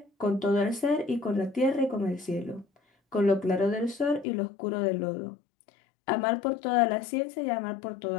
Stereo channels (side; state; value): right; drops out; at 4.2 s